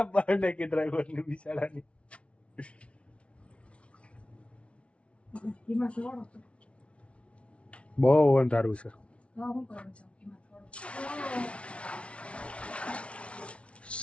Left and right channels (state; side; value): late; right; 0.061 ms